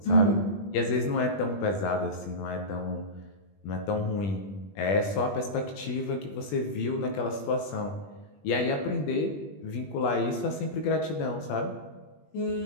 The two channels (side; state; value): right; late; 20 ms